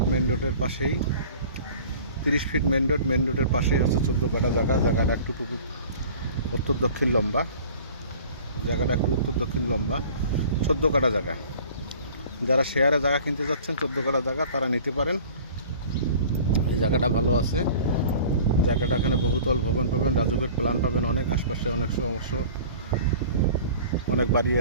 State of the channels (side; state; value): both; inverted; correlation -0.45